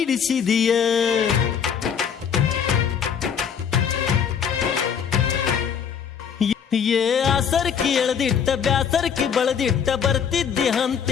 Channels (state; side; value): quieter; right; 7.5 dB